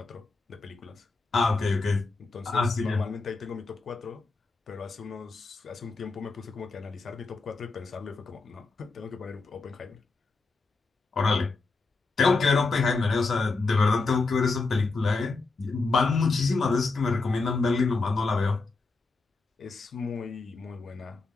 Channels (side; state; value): right; quieter; 3.8 dB